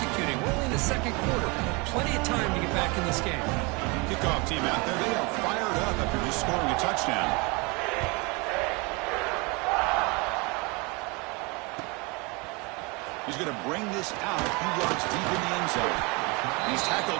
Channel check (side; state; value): left; quieter; 28.3 dB